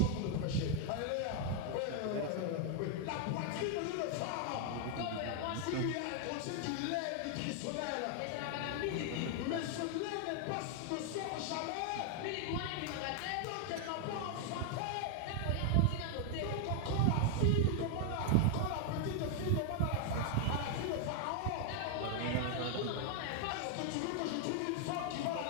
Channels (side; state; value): both; different; correlation 0.00